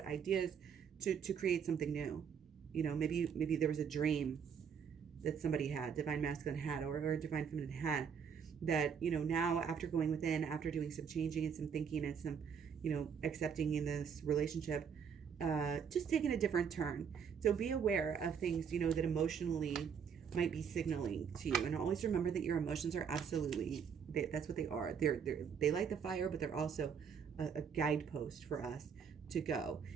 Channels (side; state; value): left; quieter; 7.0 dB